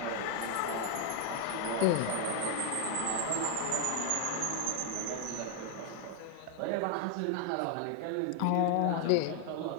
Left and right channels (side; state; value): both; different; correlation 0.00